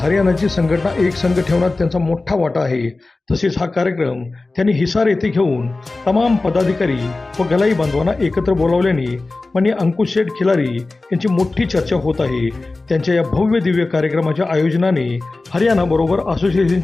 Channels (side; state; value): right; quieter; 3.3 dB